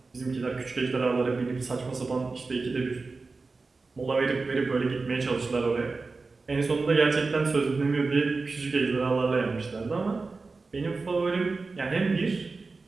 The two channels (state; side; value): quieter; left; 3.9 dB